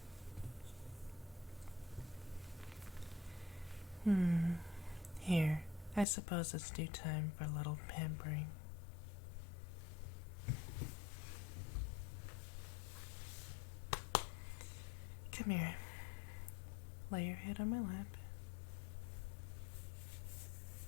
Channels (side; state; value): right; drops out; at 6.1 s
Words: Here, I suppose it's due time for a little pampering. Come here. Lay your head on my lap.